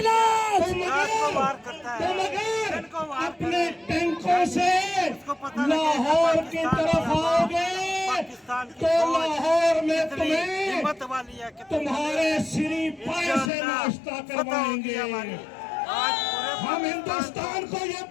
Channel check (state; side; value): drops out; right; at 13.5 s